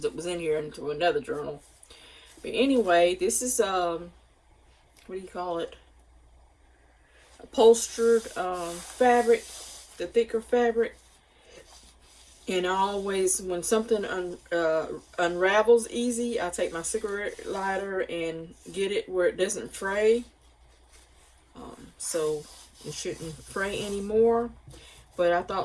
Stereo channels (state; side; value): identical; both; correlation 1.00